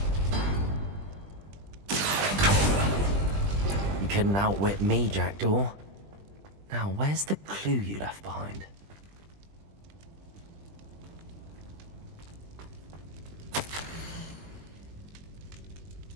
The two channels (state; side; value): late; left; 20 ms